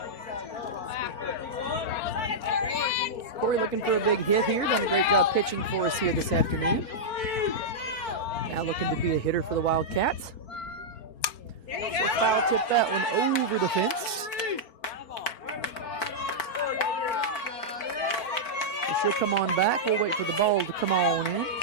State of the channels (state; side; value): late; right; 4.4 ms